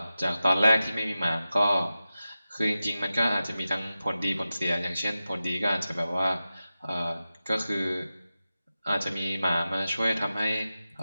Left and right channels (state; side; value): inverted; both; correlation -0.94